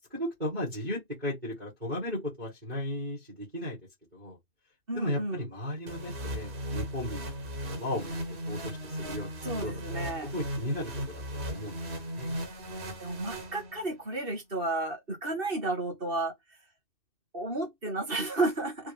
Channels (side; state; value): left; late; 2.6 ms